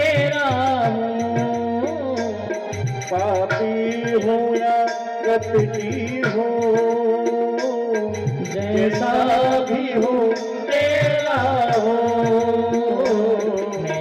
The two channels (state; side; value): identical; both; correlation 1.00